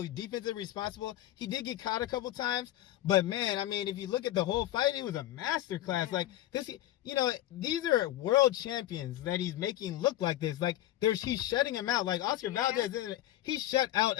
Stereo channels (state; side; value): quieter; right; 14.2 dB